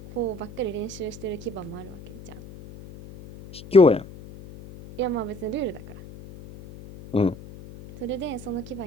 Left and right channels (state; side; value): noise; left; hum, 16 dB below the sound